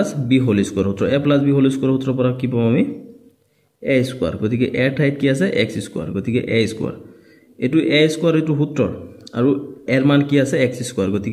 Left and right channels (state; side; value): identical; both; correlation 1.00